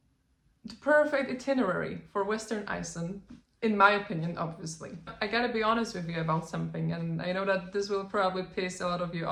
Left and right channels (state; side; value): identical; both; correlation 1.00